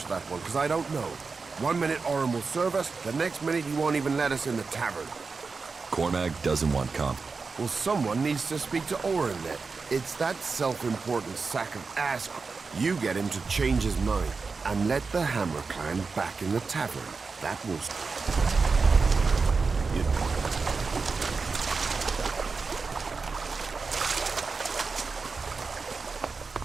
that one, because I don't know. 1 minute Orin will serve us, the next minute he won't even let us in the tavern. Cormac doesn't want comp. Well, someone needs to speak to Orin then. It's that self-important sack of ass. You get him to change his mind, and let the Hammer Clan back in the tavern. That will...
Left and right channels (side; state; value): left; quieter; 4.6 dB